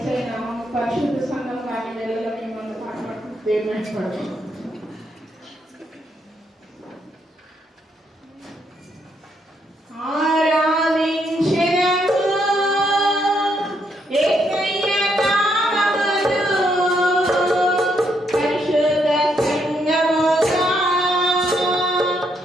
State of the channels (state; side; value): normal; both; correlation 0.76